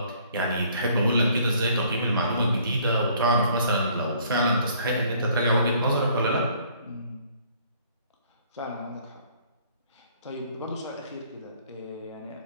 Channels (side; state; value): both; inverted; correlation -0.60